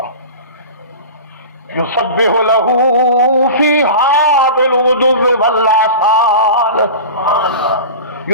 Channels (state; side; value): inverted; both; correlation -0.33